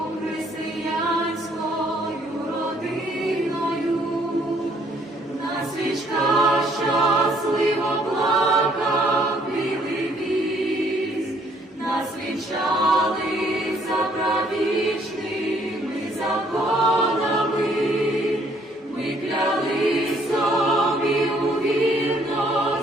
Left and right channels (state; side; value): normal; both; correlation 0.65